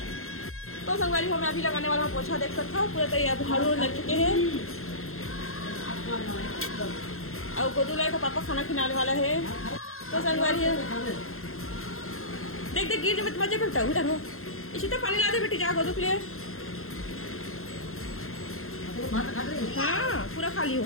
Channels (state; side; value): late; right; 0.62 ms